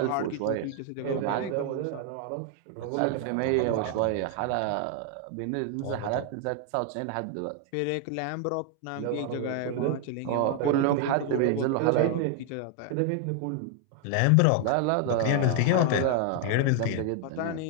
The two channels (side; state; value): both; different; correlation 0.00